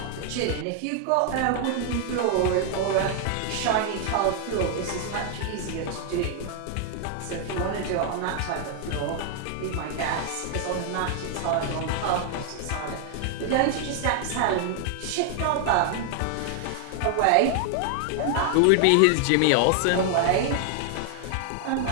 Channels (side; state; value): both; different; correlation 0.00